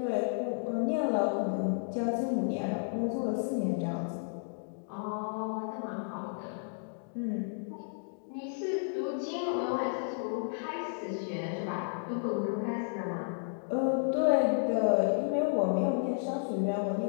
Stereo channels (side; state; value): right; silent; digital silence